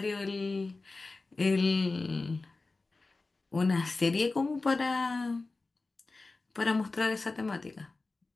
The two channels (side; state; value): right; quieter; 3.5 dB